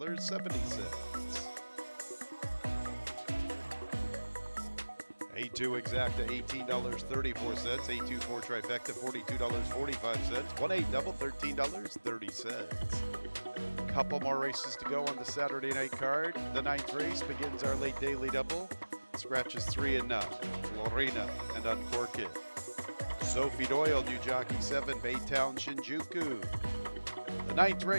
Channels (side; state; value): both; inverted; correlation -1.00